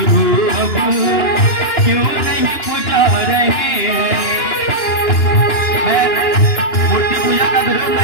अब, क्यों नहीं पुजा रहे। मैं मूर्ति पूजा का विरोध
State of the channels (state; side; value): late; right; 2.9 ms